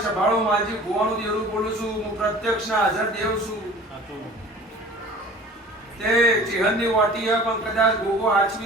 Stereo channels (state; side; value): normal; both; correlation 0.44